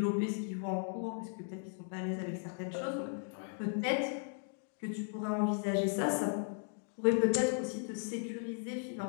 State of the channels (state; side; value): silent; right; 53 dB below the other